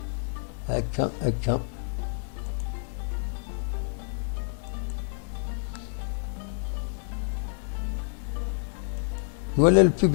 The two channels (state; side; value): silent; right; digital silence